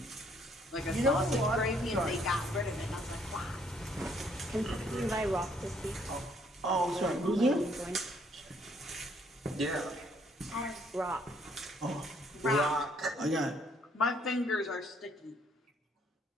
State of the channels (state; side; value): normal; both; correlation 0.67